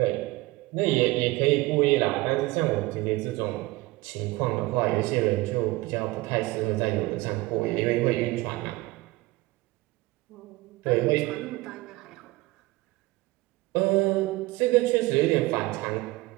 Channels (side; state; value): left; quieter; 20.4 dB